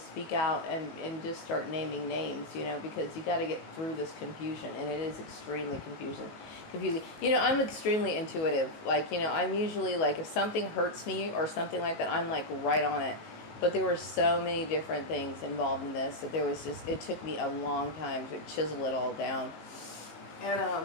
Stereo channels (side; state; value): right; late; 19 ms